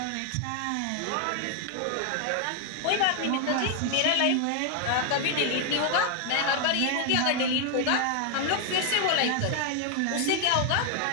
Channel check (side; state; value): both; different; correlation 0.00